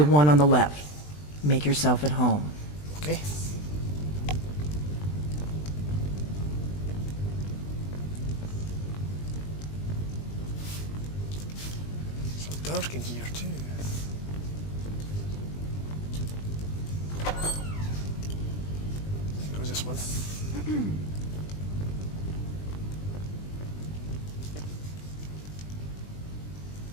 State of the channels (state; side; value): late; right; 20 ms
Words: one on the left. Make yourself at home. Okay. So dark in here too. I think it was this one.